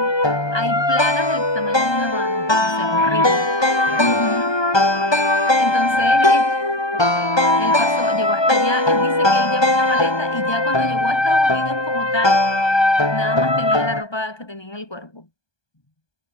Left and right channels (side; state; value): right; late; 1.2 ms